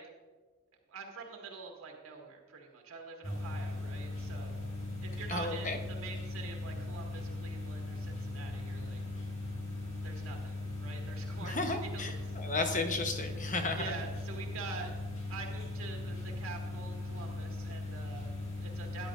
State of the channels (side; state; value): both; normal; correlation 0.51